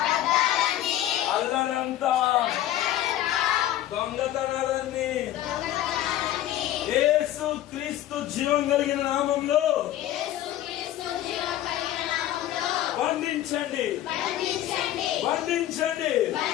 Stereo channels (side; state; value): right; quieter; 13.1 dB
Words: అల్లరంతా, దొంగతనాలన్నీ యేసు క్రీస్తు జీవం కలిగిన నామంలో బంధించండి, బంధించండి.